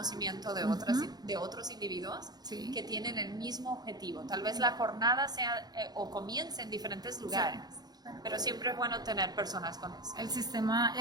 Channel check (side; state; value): left; late; 0.19 ms